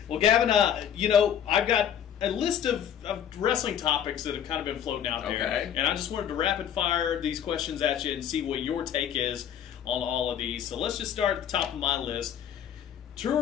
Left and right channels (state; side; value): quieter; right; 9.4 dB